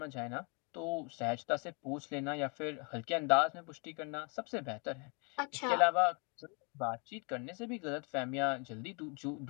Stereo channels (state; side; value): quieter; right; 34.1 dB